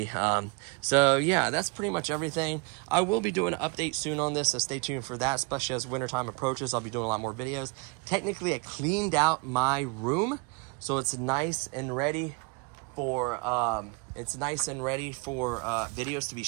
So yeah, that's pretty much everything. I will be doing an update soon on this, so stay tuned for that, especially as wintertime approaches. I'll be doing a lot more videos. Technically, I cleaned out my room, so it's nice and ready for videos to be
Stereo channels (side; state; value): left; quieter; 29.9 dB